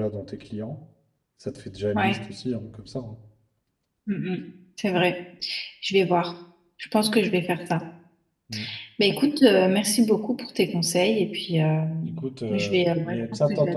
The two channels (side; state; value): both; identical; correlation 1.00